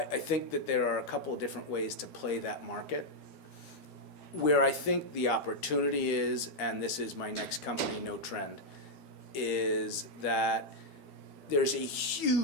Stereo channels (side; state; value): right; late; 13 ms